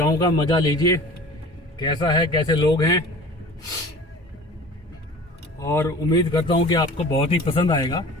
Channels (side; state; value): both; normal; correlation 0.42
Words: का मज़ा लीजिए, कैसा है, कैसे लोग हैं, और उम्मीद करता हूँ कि आपको बहुत ही पसंद आएगा।